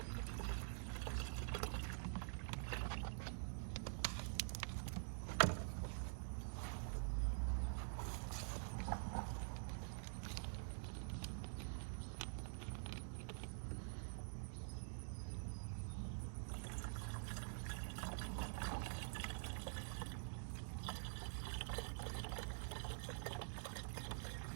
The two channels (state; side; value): silent; left; digital silence